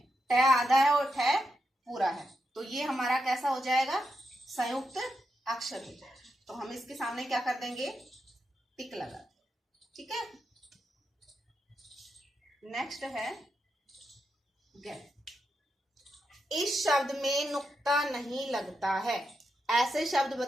ट आधा है और ठ पूरा है, तो ये हमारा कैसा हो जाएगा, संयुक्त अक्षर हो जाएगा। तो हम इसके सामने क्या कर देंगे, टिक लगा, ठीक है। नेक्स्ट है ग। इस शब्द में नुक्ता नहीं लगता है। ऐसे शब्द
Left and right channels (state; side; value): normal; both; correlation 0.85